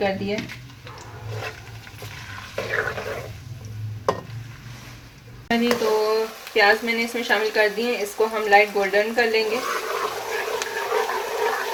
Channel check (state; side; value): identical; both; correlation 1.00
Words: दिया। तो प्याज मैंने इसमें शामिल कर दिए, इसको हम लाइट गोल्डन कर लेंगे।